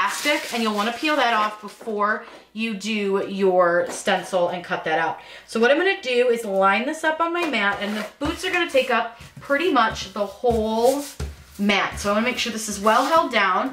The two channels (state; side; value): identical; both; correlation 1.00